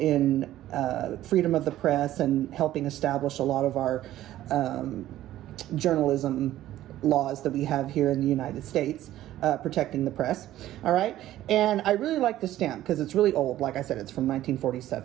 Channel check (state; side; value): quieter; left; 13.8 dB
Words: freedom of the press and helping establish a lot of our journalism laws that we have here in the United States, protecting the press, all right? And I really like this stamp because it's really old. Like I said, it's from